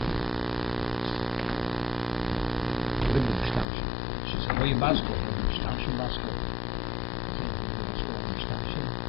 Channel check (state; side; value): drops out; right; at 3.7 s